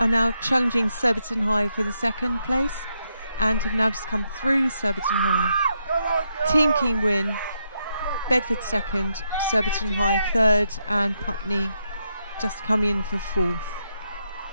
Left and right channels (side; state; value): both; inverted; correlation -0.81